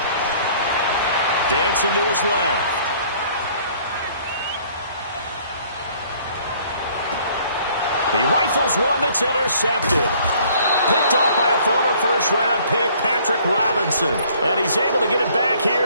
Dancing to his left. He rifles one that's intercepted. Picked off by a former first-round pick, Patrick Robinson. And he's able to get it back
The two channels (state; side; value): inverted; both; correlation -0.58